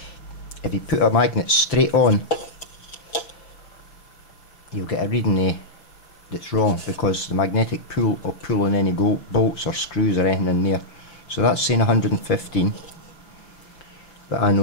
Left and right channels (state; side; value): late; right; 5.8 ms